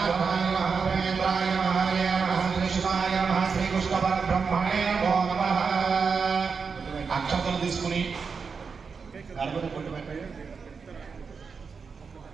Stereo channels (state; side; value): quieter; left; 5.4 dB